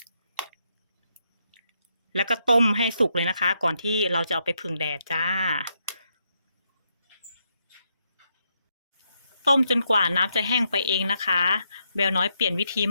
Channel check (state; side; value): inverted; both; correlation -0.79